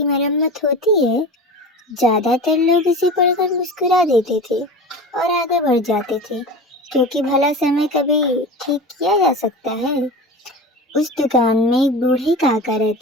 मरम्मत होती है। ज्यादातर लोग इसे पढ़कर मुस्कुरा देते थे और आगे बढ़ जाते थे, क्योंकि भला समय कभी ठीक किया जा सकता है। उस दुकान में एक बूढ़े काका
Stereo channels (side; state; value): both; normal; correlation 0.31